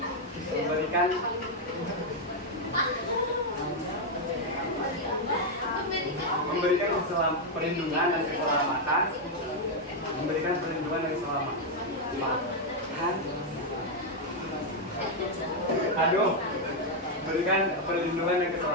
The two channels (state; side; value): normal; both; correlation 0.00